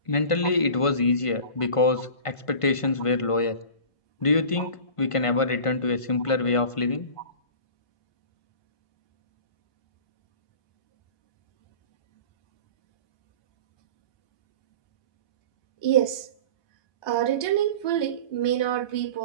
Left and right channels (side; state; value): right; late; 1.5 ms